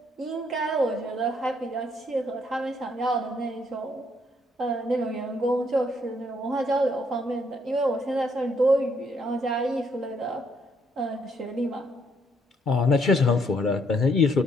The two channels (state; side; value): normal; both; correlation 0.70